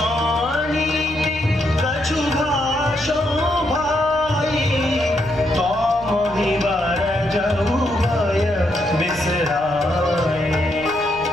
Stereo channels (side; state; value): right; noise; rumble, 18 dB below the sound